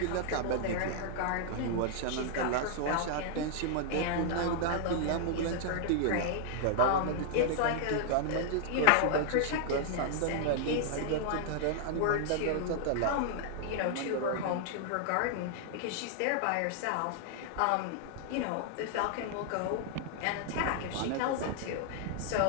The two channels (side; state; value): both; different; correlation -0.01